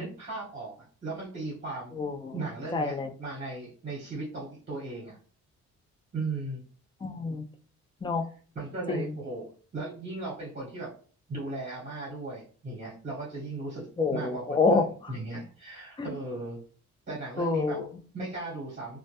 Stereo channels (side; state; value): both; normal; correlation 0.40